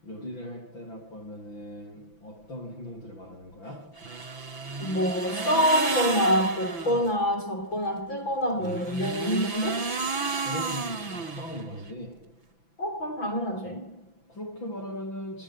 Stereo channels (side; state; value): right; late; 6.0 ms